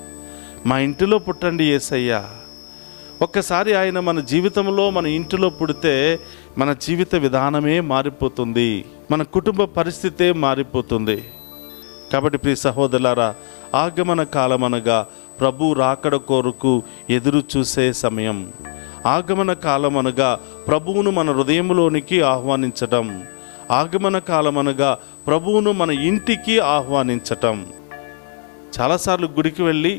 మా ఇంటిలో పుట్టండి యేసయ్యా. ఒక్కసారి ఆయన మన జీవితంలో, మన ఇంటిలో పుడితే మన జీవిత విధానమే మారిపోతుంది, మన కుటుంబ పరిస్థితే మారిపోతుంది. కాబట్టి ప్రియ సహోదరులారా, ఆగమన కాలం అనగా ప్రభు రాకడ కొరకు ఎదురు చూసే సమయం. ఆగమన కాలం అనగా ప్రభువును మన హృదయంలోనికి ఆహ్వానించటం. ఆగమన కాలం అనగా ప్రభువును మన ఇంటికి ఆహ్వానించటం. చాలాసార్లు గుడికి వెళ్ళి,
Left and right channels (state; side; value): silent; right; 65 dB below the other